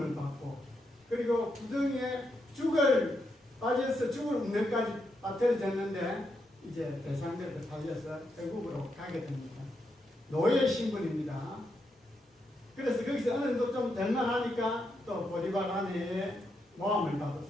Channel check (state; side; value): normal; both; correlation 0.82